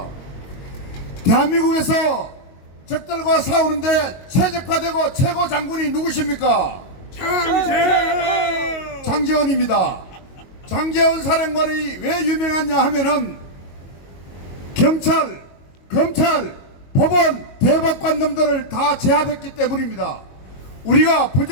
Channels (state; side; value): late; right; 22 ms